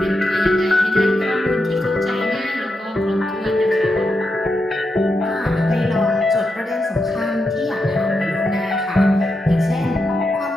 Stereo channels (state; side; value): normal; both; correlation 0.86